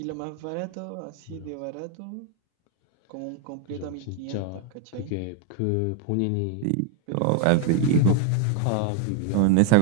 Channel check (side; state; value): both; different; correlation 0.01